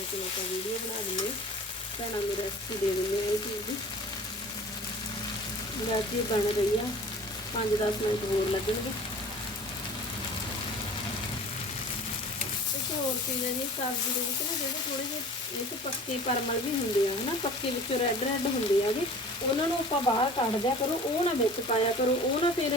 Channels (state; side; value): normal; both; correlation 0.43